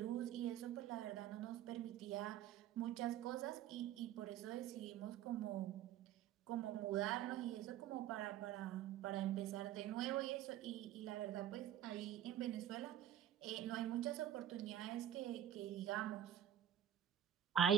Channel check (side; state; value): left; quieter; 10.9 dB